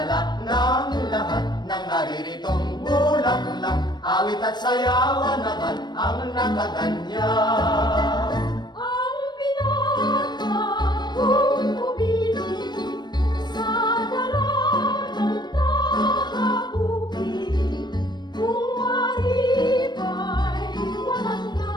ng lahat ng nariritong bulaklak, awit at sayawan naman ang nakaganyan. Ang pinakakong umilig sa dalagang tagabukid, kung mariba'y walang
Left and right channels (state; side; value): late; right; 0.21 ms